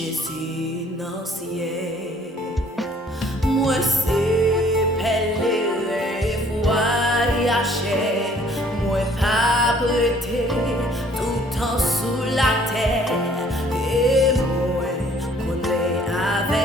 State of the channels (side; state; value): both; normal; correlation 0.58